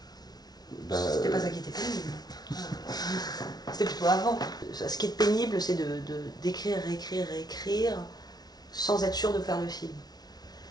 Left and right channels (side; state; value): right; late; 0.19 ms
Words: Bah, c'était pas ça qui était pénible. C'était plutôt avant. Ce qui est pénible, c'est d'écrire, réécrire, sans être sûr de faire le film.